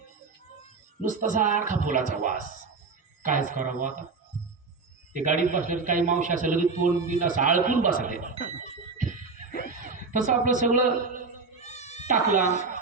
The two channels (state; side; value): quieter; left; 4.4 dB